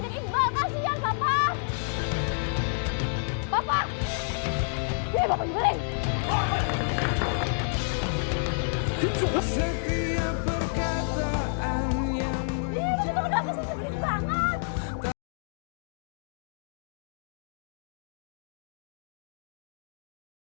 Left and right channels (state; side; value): silent; right; digital silence